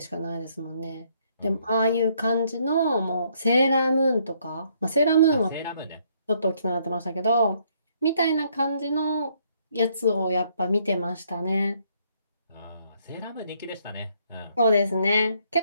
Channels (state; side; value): inverted; both; correlation -0.69